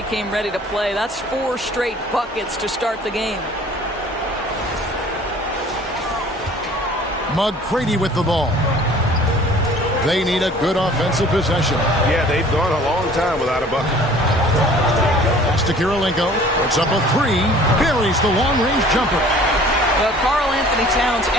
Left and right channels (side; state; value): both; normal; correlation 0.50